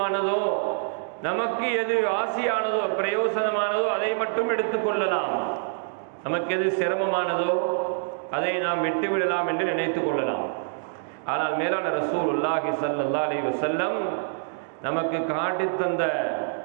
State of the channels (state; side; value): silent; left; digital silence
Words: நமக்கு எது ஆசியானதோ, பிரயோசனமானதோ அதை மட்டும் எடுத்துக்கொள்ளலாம், நமக்கு எது சிரமமானதோ அதை நாம் விட்டுவிடலாம் என்று நினைத்து கொள்ளலாம். ஆனால் மேலான ரசூலுல்லாஹி ஸல்லல்லாஹு அலைஹி வஸல்லம் நமக்கு காட்டித் தந்த